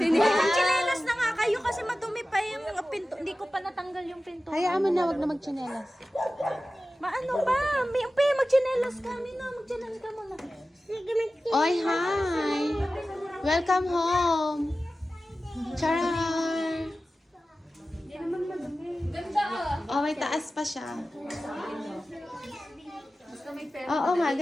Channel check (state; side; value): normal; both; correlation 0.95